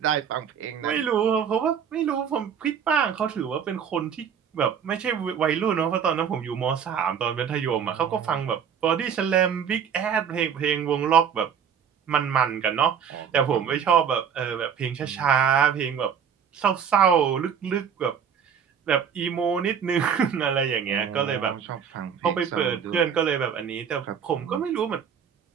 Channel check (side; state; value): left; quieter; 7.6 dB